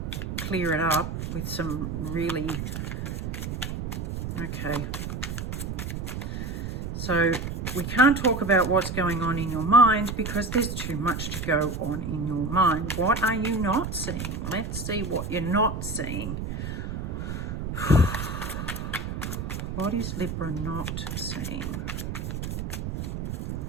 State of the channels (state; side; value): noise; right; rumble, 4 dB below the sound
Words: clear it up with some really, okay. So we can't talk about what's going on in your mind because there's too much to go on in your mind. What are you not seeing? Let's see what you're not seeing. What is Libra not seeing?